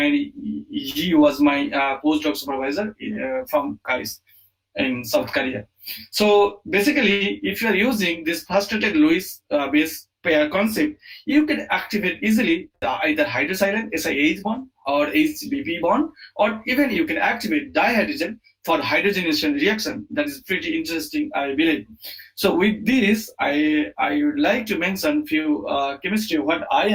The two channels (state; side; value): identical; both; correlation 1.00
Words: he was my postdoc supervisor from KAIST in South Korea. So basically, if you are using this frustrated Lewis base pair concept, you can activate easily either hydrosilane SiH bond or HBP bond, or even you can activate dihydrogen for hydrogenation reaction. That is pretty interesting, I believe. So with this, I would like to mention few chemistry what I